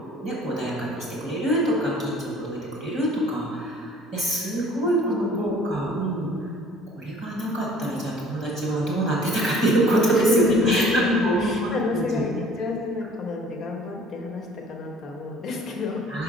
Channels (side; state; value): both; normal; correlation 0.51